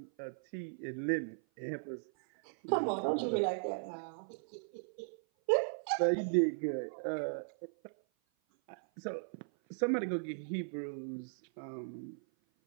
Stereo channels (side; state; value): left; silent; 53 dB below the other